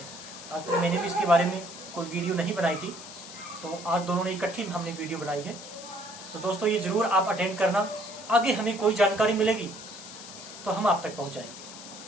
आज तक मैंने भी इसके बारे में कोई वीडियो नहीं बनाई थी, तो आज दोनों ने इकट्ठी हमने वीडियो बनाई है। तो दोस्तों ये ज़रूर आप अटेंड करना, आगे हमें कोई जानकारी मिलेगी तो हम आप तक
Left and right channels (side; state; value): left; noise; hiss, 14 dB below the sound